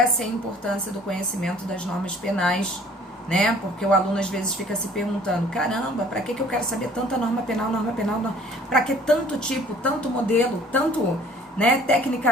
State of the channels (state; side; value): normal; both; correlation 0.53